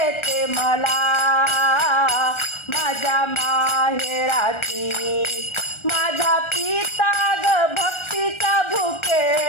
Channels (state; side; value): late; right; 1.3 ms